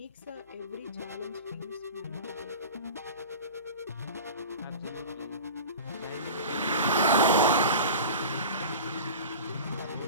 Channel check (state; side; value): inverted; both; correlation -0.34